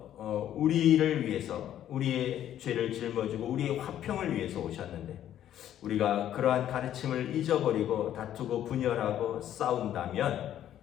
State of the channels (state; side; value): quieter; right; 11.3 dB